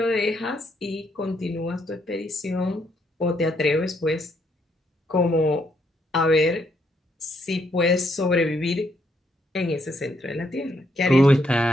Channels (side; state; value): both; normal; correlation 0.74